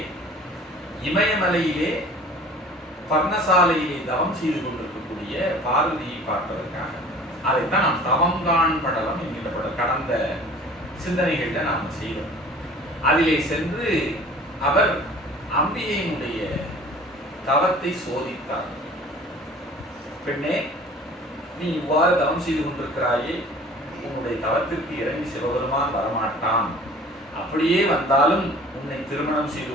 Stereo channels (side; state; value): both; normal; correlation 0.46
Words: இமயமலையிலே பர்ணசாலையிலே தவம் செய்து கொண்டிருக்கக்கூடிய பார்வதியை பார்ப்பதற்காக. அதைத்தான் நாம் தவங்கான் படலம் என்கின்ற படம் கடந்த சிந்தனைகள்ல நாம் செய்தோம். அதிலே சென்று அவர் அம்பிகையினுடைய தவத்தை சோதித்தார். பெண்ணே, நீ இவ்வாறு தவம் செய்து கொண்டிருக்கிறாயே, உன்னுடைய தவத்திற்கு இறங்கி சிவபெருமான் வரமாட்டான், அப்படியே வந்தாலும் உன்னை திருமணம் செய்து